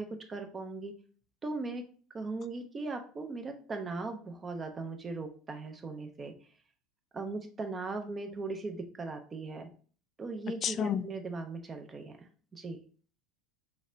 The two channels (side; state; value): both; normal; correlation 0.69